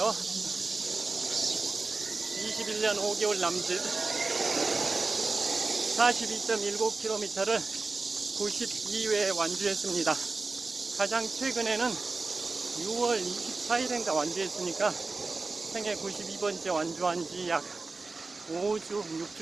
21년 5개월 남짓 42.19km를 92회 완주했습니다. 가장 최근에는 6월 24일인가 완주했으니까 생애 92번째 완주한 지 약 5주,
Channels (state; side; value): quieter; left; 3.8 dB